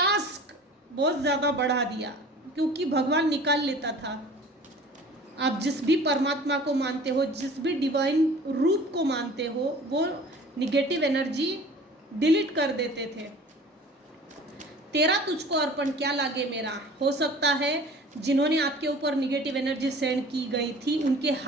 बहुत ज़्यादा बढ़ा दिया, क्योंकि भगवान निकाल लेता था। आप जिस भी परमात्मा को मानते हो, जिस भी डिवाइन रूप को मानते हो, वो निगेटिव एनर्जी डिलीट कर देते थे। तेरा तुझको अर्पण क्या लागे मेरा। हो सकता है जिन्होंने आपके ऊपर निगेटिव एनर्जी सेंड की गई थी उनके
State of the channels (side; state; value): both; normal; correlation 0.45